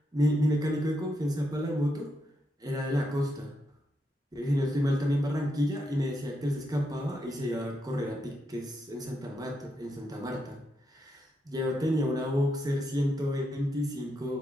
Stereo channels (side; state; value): both; normal; correlation 0.82